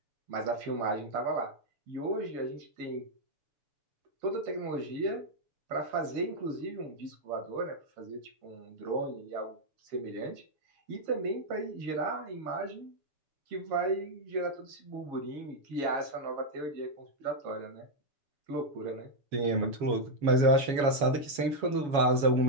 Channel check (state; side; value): late; left; 7.1 ms